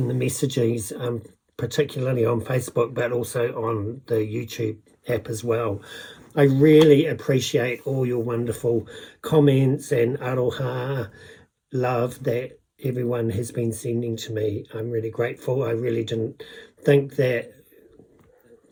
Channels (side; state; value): both; identical; correlation 1.00